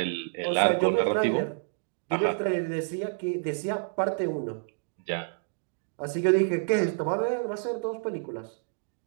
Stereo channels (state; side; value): silent; left; digital silence